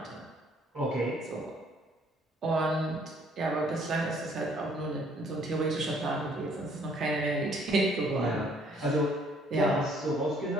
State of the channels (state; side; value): normal; both; correlation 0.62